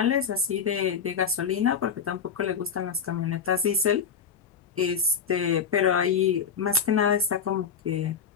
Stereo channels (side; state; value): right; quieter; 6.4 dB